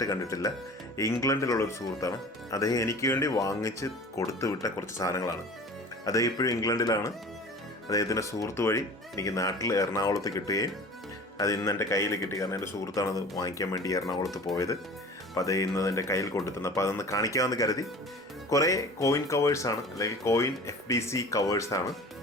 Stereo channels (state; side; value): normal; both; correlation 0.41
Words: കണ്ടിട്ടില്ല. ഇംഗ്ലണ്ടിലുള്ളൊരു സുഹൃത്താണ്. അദ്ദേഹം എനിക്ക് വേണ്ടി വാങ്ങിച്ച് കൊടുത്തു വിട്ട കുറച്ച് സാധനങ്ങളാണ്. അദ്ദേഹം ഇപ്പോഴും ഇംഗ്ലണ്ടിലാണ്. അദ്ദേഹത്തിൻ്റെ സുഹൃത്ത് വഴി എനിക്ക് നാട്ടിൽ എറണാകുളത്ത് കിട്ടുകയും അത് ഇന്ന് എൻ്റെ കയ്യിൽ കിട്ടി. കാരണം എൻ്റെ സുഹൃത്താണത് വാങ്ങിക്കാൻ വേണ്ടി എറണാകുളത്ത് പോയത്. അപ്പോൾ അത് ഇന്ന് എൻ്റെ കയ്യിൽ കൊണ്ടുത്തന്നു. അപ്പോൾ അതൊന്ന് കാണിക്കാമെന്ന് കരുതി. കുറേ കോയിൻ കവേഴ്സാണ്, അല്ലെങ്കിൽ കോയിൻ FDC കവേഴ്സാണ്.